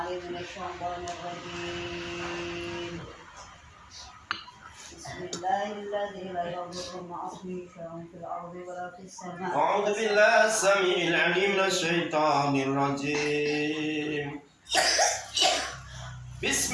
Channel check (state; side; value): identical; both; correlation 1.00